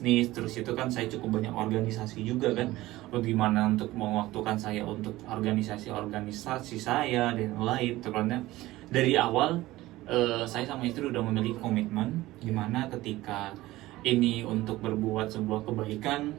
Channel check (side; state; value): left; quieter; 17.5 dB